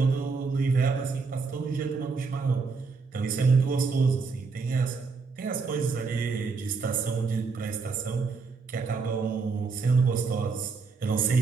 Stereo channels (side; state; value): left; quieter; 4.7 dB